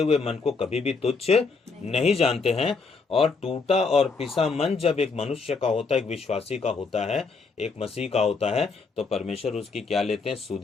मन को कभी भी तुच्छ नहीं जानते हैं। और टूटा और पिसा मन जब एक मनुष्य का होता है, एक विश्वासी का होता है, एक मसीह का होता है, तो परमेश्वर उसकी क्या लेते हैं?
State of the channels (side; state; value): right; quieter; 4.5 dB